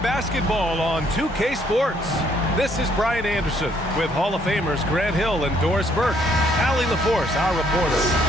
basketball on 2K Sports. This is Brian Anderson with Hall of Famers Grant Hill and Doris Burke. Allie LaForce, our reporter.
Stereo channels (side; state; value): both; normal; correlation 0.67